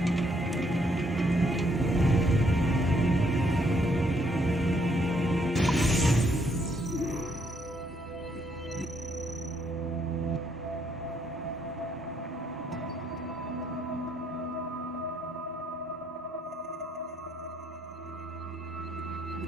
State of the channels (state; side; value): normal; both; correlation 0.71